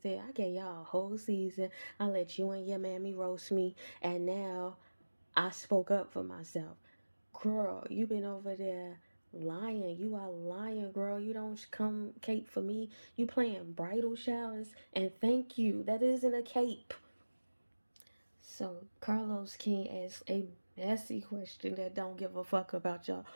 I gave y'all a whole season. I let you and your mammy roast me. And now I spoke up for myself. Girl, you been over there lying. You are lying, girl. You don't come cape for me. You playing bridal showers. And thank you. That isn't a cape. So Carlos King asks a messy question that don't give a fuck about your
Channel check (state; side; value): inverted; both; correlation -1.00